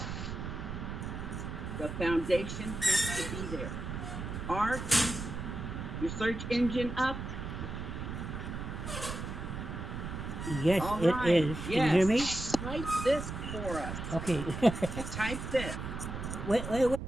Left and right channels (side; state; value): right; noise; rumble, 6 dB below the sound